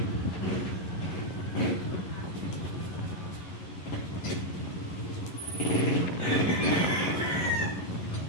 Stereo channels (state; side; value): late; right; 11 ms